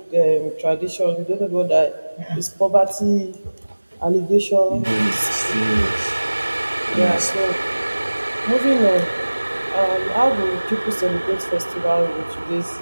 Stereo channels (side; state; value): both; inverted; correlation -1.00